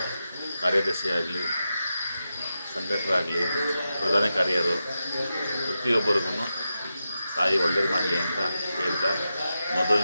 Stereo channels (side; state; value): both; inverted; correlation -0.90